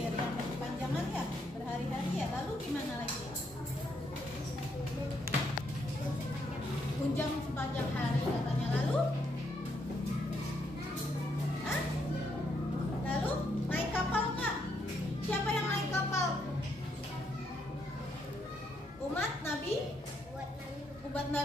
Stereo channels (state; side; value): normal; both; correlation 0.75